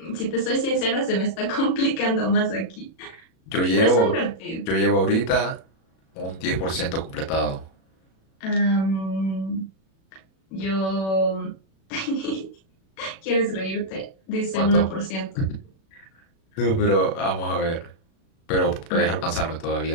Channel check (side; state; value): right; late; 37 ms